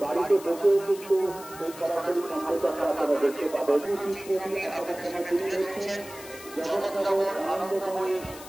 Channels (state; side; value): noise; left; hiss, 16 dB below the sound